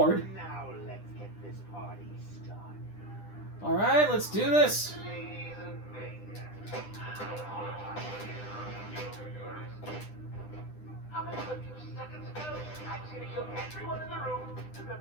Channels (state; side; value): late; right; 9.9 ms